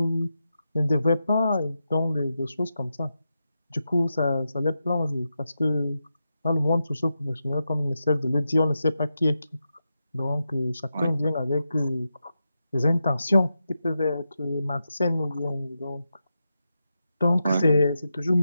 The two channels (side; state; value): both; inverted; correlation -0.88